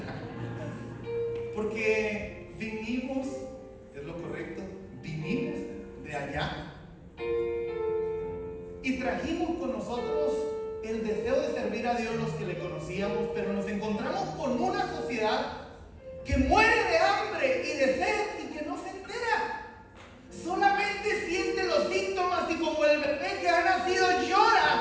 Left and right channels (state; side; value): identical; both; correlation 1.00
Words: Porque vinimos, es lo correcto, vinimos de allá y trajimos con nosotros el deseo de servir a Dios los que le conocíamos, pero nos encontramos con una sociedad que muere de hambre y de sed y que no se entera. Solamente siente los síntomas y como el bebé que ha nacido